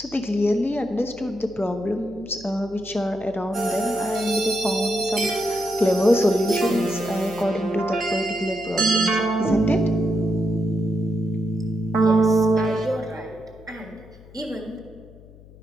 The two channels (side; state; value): left; noise; hum, 22 dB below the sound